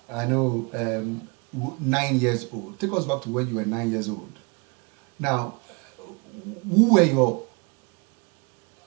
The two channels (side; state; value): left; quieter; 31.1 dB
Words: 9 years old. Take us back to when you were 9 years old. Now, who were your